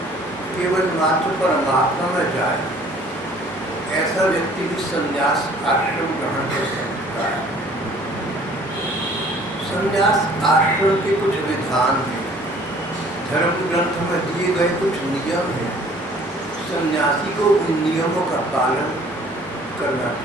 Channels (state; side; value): normal; both; correlation 0.54